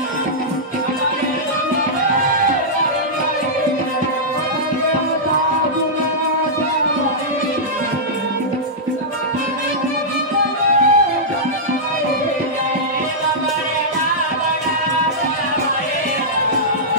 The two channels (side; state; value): both; normal; correlation -0.12